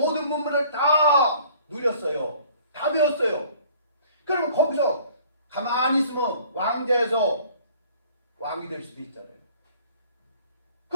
문물을 다 누렸어요. 다 배웠어요. 그러면 거기서 가만히 있으면 왕자에서 왕이 될 수도 있잖아요.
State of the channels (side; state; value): both; inverted; correlation -0.53